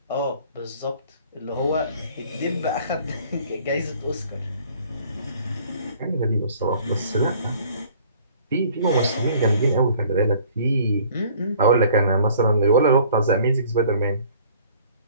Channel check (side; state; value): both; inverted; correlation -0.54